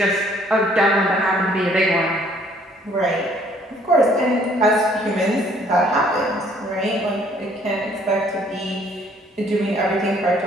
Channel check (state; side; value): normal; both; correlation 0.61